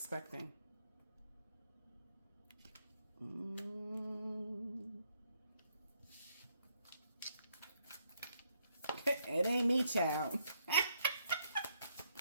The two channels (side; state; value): both; inverted; correlation -0.74